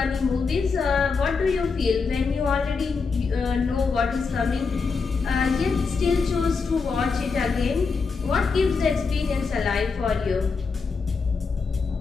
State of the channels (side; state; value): right; quieter; 4.9 dB